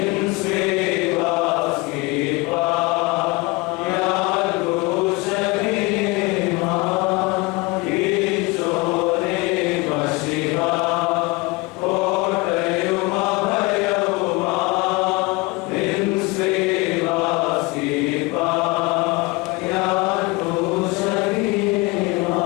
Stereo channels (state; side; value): quieter; right; 24.8 dB